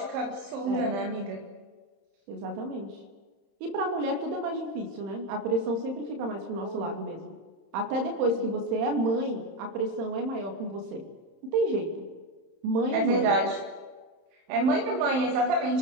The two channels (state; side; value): late; left; 30 ms